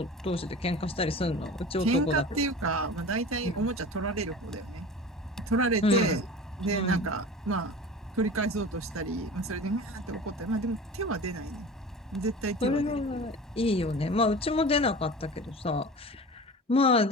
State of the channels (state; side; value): normal; both; correlation 0.36